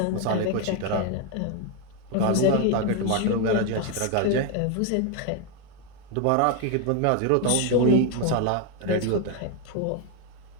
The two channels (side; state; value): both; different; correlation 0.01